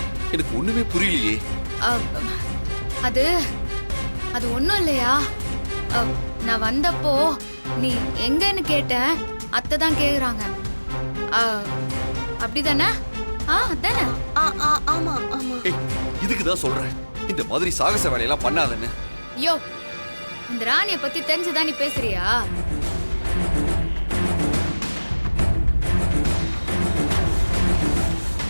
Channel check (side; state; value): both; inverted; correlation -1.00